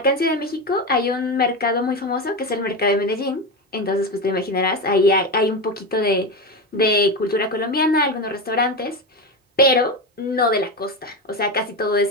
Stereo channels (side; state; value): both; normal; correlation 0.18